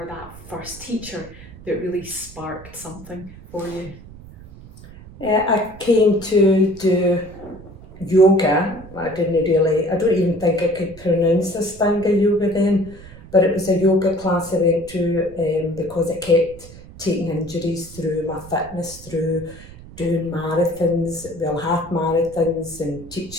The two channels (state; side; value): noise; right; rumble, 18 dB below the sound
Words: that first teacher that really sparked something for you. I came to do yoga. I don't even think I could pronounce Ashtanga yoga then, but it was a yoga class I went to because I kept taking injuries through my fitness, through doing marathons, half marathons and